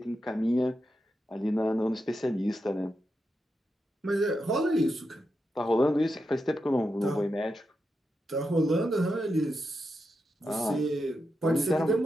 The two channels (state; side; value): normal; both; correlation 0.87